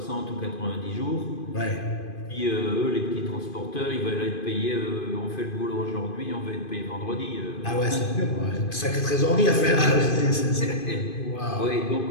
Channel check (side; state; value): right; late; 2.5 ms